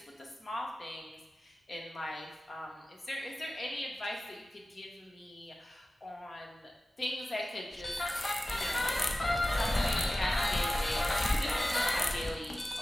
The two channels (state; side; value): normal; both; correlation 0.95